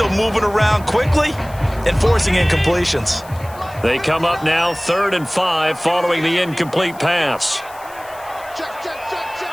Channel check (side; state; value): left; noise; hiss, 22 dB below the sound